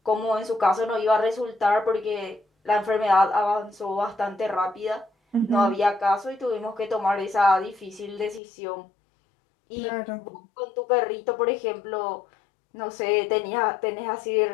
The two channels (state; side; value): drops out; right; at 8.4 s